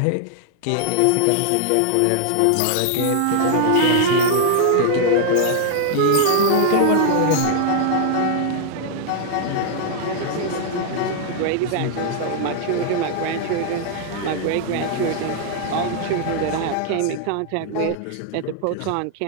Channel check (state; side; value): different; both; correlation 0.00